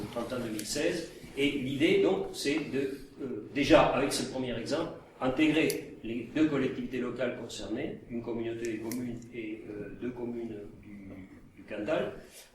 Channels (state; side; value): identical; both; correlation 1.00